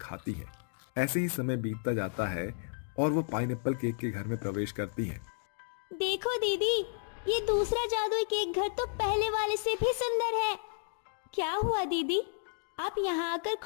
हैं। ऐसे ही समय बीतता जाता है और वो पाइनएप्पल केक के घर में प्रवेश करती हैं। देखो दीदी, ये दूसरा जादुई केक घर तो पहले वाले से भी सुंदर है। क्या हुआ दीदी, आप यहाँ आकर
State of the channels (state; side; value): silent; right; digital silence